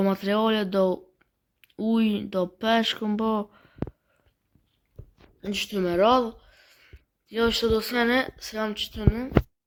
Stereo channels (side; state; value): both; identical; correlation 1.00